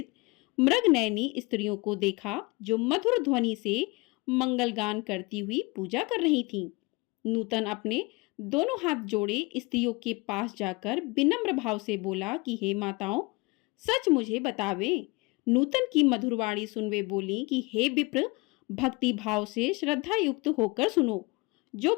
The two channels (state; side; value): quieter; right; 25.6 dB